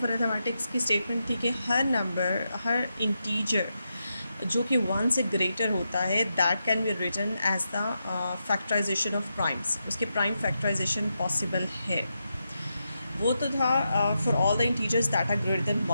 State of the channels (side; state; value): both; inverted; correlation -0.86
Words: अरिथमेटिक्स की स्टेटमेंट थी कि हर नंबर, हर इंटीजर जो कि वन से ग्रेटर होता है, that can be written as the factorisation of primes. उसके प्राइम फैक्टराइजेशन पॉसिबल है। वो तो था for all the integers that are greater than